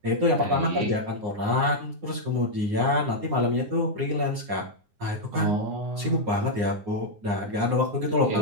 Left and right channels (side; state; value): left; late; 9.7 ms